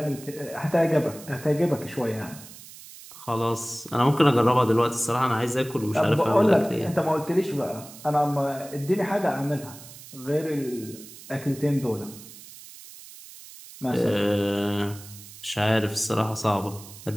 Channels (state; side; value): noise; right; hiss, 17 dB below the sound